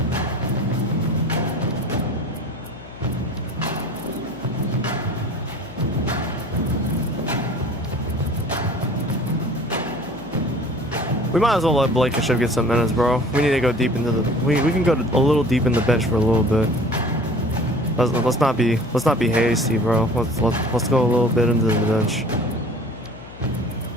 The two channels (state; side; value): noise; left; hum, 18 dB below the sound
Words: We might as well let Blankenship get some minutes, bro. We need to go deep into the. We can go a little deep in the bench for a little bit. Let's not be hasty, bro. Let's go a little bit into the bench.